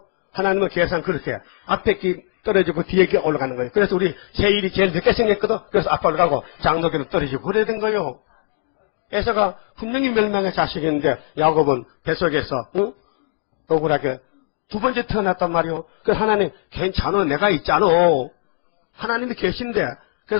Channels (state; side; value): silent; right; digital silence